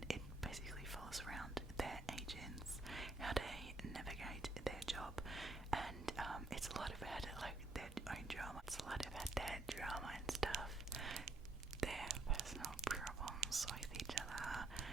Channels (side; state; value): left; quieter; 3.1 dB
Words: it basically follows around their agents, how they navigate their job, and it's a lot about like their own drama. It's a lot about their drama and stuff, their personal problems with each other,